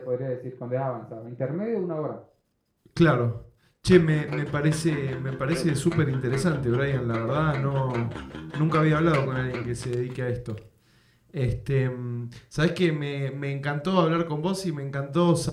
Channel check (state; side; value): identical; both; correlation 1.00